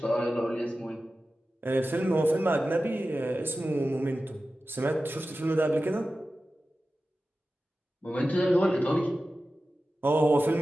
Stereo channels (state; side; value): normal; both; correlation 0.94